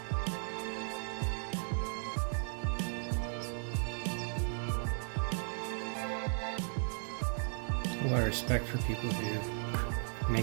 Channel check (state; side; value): silent; left; digital silence